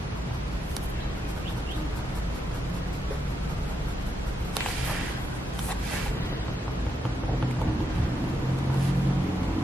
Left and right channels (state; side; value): normal; both; correlation 0.82